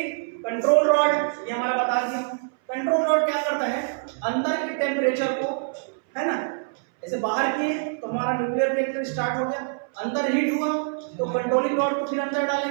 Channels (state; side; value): silent; left; 62 dB below the other